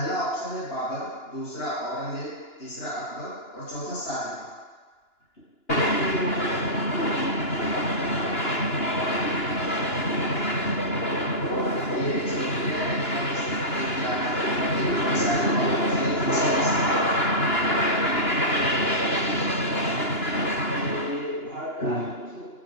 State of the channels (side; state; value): right; late; 2.9 ms